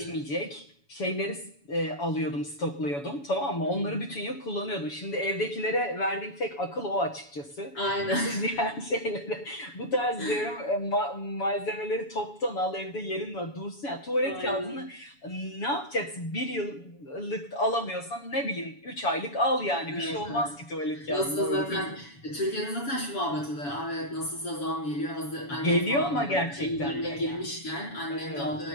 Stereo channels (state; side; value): late; right; 7.1 ms